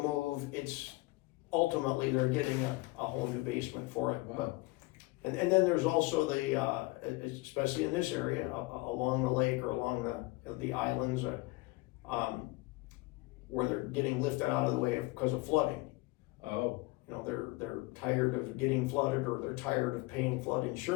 it's ultimately they're getting a whole new basement for it. Wow. But and then there's also the especially in this area along the lake or along the islands, where they're getting lifted out of the way because of flooding. Oh. They're tired of getting flooded, or they're tired of paying flood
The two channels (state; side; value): quieter; right; 22.5 dB